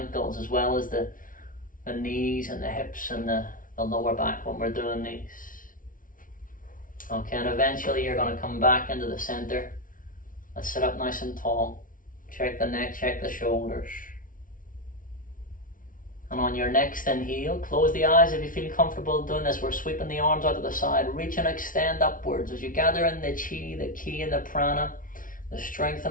as well as the knees and the hips and the lower back when we're doing these. Okay, and eventually you're going to come back into the center. Let's sit up nice and tall. Check the neck, check the shoulders. And on your next inhale, close the eyes if you feel comfortable doing this. We're sweeping the arms out to the side. Reach and extend upwards as you gather in the chi, the ki, and the prana, the strength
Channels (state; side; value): late; right; 0.39 ms